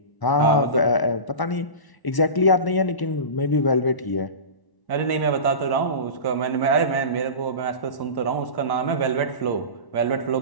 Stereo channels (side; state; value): right; late; 1.0 ms